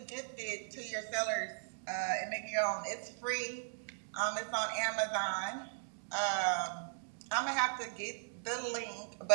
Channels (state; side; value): silent; left; digital silence